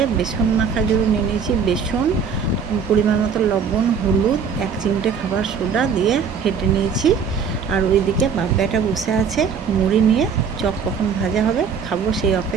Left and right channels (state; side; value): quieter; left; 6.3 dB